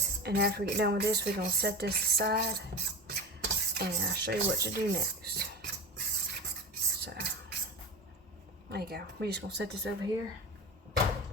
And after we get done with this, we're gonna set this aside and I'll show you what to do next. So there you go. We're just gonna set this over here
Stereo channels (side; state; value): both; normal; correlation 0.28